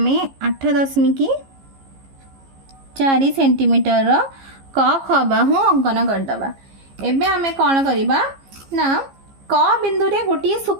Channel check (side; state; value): left; late; 15 ms